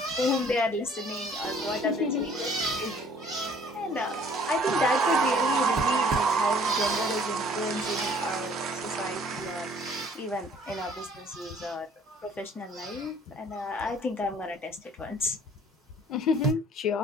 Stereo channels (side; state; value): both; normal; correlation 0.56